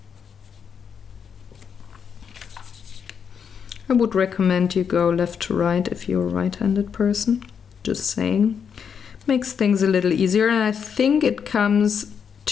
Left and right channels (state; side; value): quieter; right; 7.1 dB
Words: I would recommend you go left to right if you're a right-handed person. Just saying. Makes things a little easier, and I think it comes